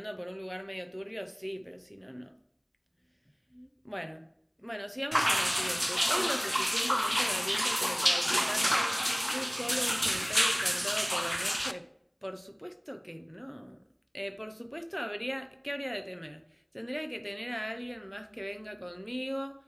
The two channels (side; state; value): both; identical; correlation 1.00